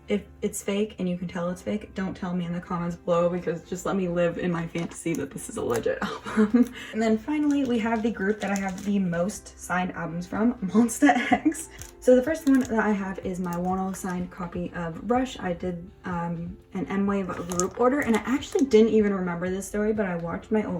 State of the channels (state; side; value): identical; both; correlation 1.00